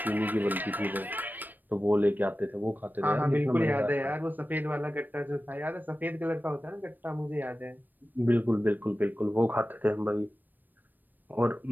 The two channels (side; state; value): left; late; 0.090 ms